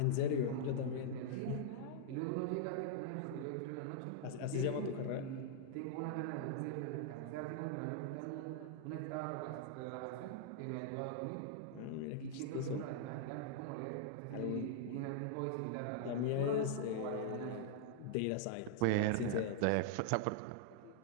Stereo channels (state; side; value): different; both; correlation -0.01